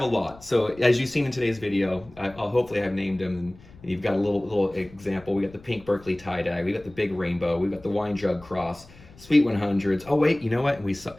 a lot. So as you've seen in today's video, I'll hopefully have named them, and you've got a little example. We got the pink Berkeley tie-dye, we got the big rainbow, we got the wine jug cross, Sweet 100s. Oh wait, you know what? We saw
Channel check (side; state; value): left; noise; rumble, 22 dB below the sound